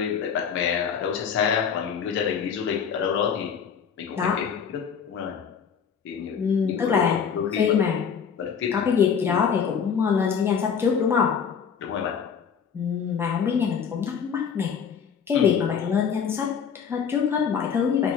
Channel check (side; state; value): right; quieter; 7.0 dB